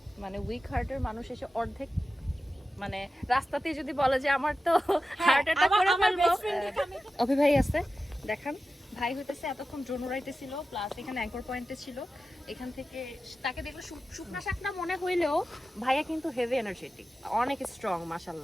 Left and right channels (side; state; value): both; normal; correlation 0.93